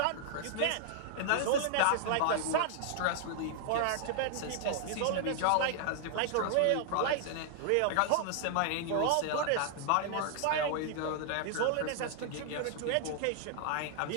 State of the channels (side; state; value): both; different; correlation 0.00